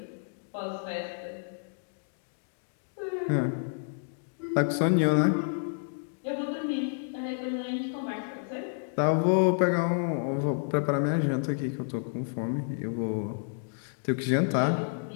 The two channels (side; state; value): right; silent; digital silence